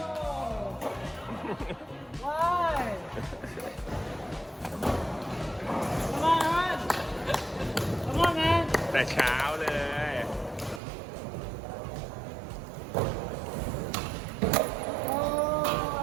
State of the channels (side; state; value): left; drops out; at 10.8 s